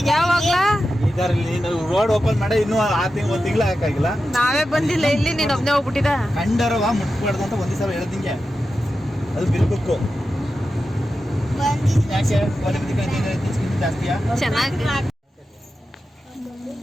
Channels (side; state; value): both; normal; correlation 0.91